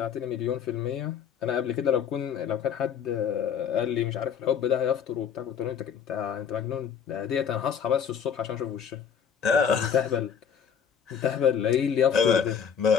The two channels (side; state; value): right; quieter; 7.6 dB